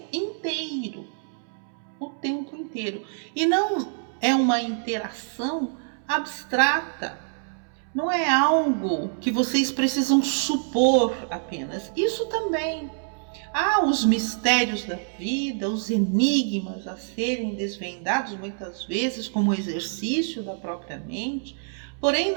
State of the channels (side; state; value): left; silent; 61 dB below the other